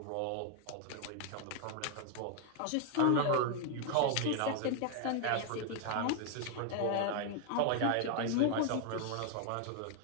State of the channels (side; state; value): both; different; correlation 0.00